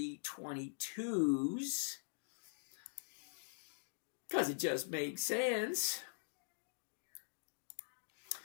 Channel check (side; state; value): right; silent; digital silence